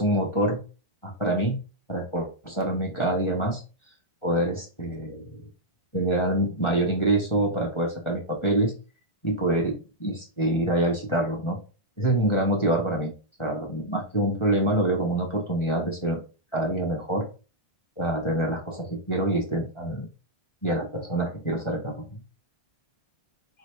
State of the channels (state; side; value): late; right; 1.4 ms